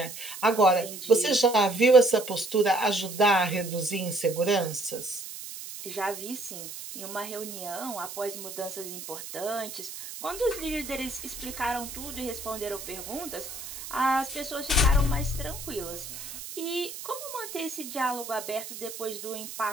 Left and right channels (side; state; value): right; noise; hiss, 10 dB below the sound